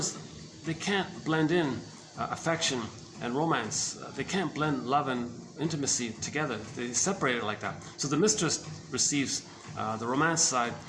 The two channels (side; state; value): both; identical; correlation 1.00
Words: they can't blend in affection and romance. They can't blend love and intimacy together. They separate it like that. So the mistress receives the romance side,